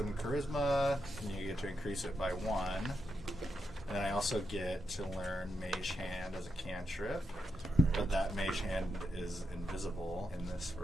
and charisma, and you get to increase it by 1. And then I also get to learn Mage Hand as a cantrip, but that Mage Hand is invisible in this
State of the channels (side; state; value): both; normal; correlation 0.84